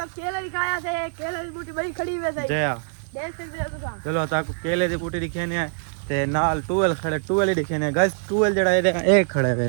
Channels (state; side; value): silent; left; digital silence